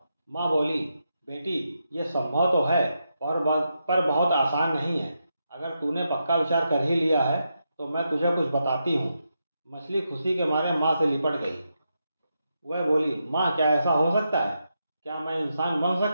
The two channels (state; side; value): inverted; both; correlation -0.85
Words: माँ बोली, बेटी, ये संभव तो है पर बहुत आसान नहीं है। अगर तूने पक्का विचार कर ही लिया है तो मैं तुझे कुछ बताती हूँ। मछली खुशी के मारे माँ से लिपट गई। वह बोली, माँ, क्या ऐसा हो सकता है? क्या मैं इंसान बन